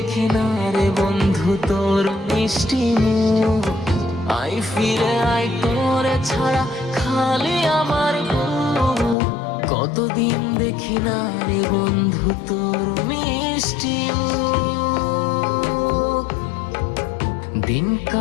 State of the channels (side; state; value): right; drops out; at 9.2 s